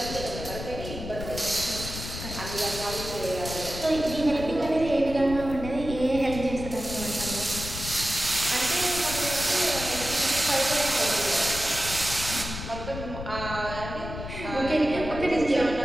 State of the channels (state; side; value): noise; left; rumble, 8 dB below the sound